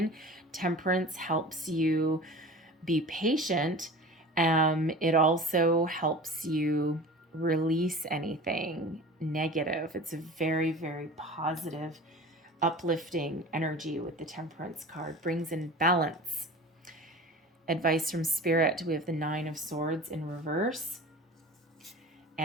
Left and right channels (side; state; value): both; normal; correlation 0.37